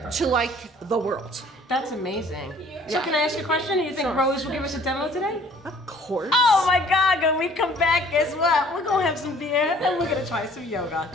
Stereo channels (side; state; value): both; normal; correlation 0.55